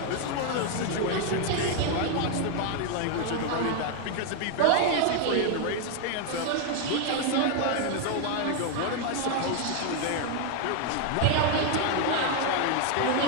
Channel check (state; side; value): different; both; correlation 0.00